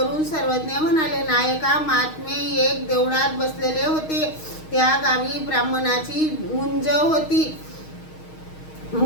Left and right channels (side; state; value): right; late; 6.4 ms